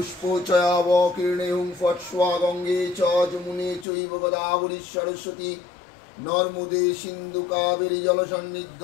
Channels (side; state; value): right; drops out; at 3.9 s